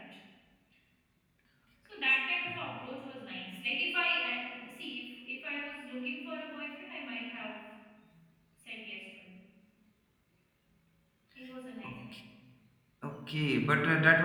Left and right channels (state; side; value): identical; both; correlation 1.00